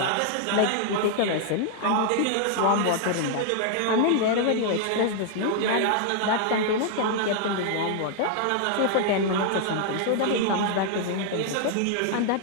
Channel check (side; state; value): both; different; correlation 0.00